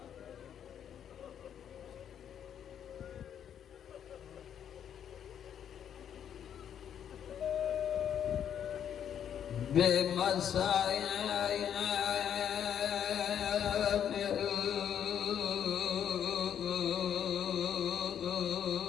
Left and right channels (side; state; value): right; quieter; 9.1 dB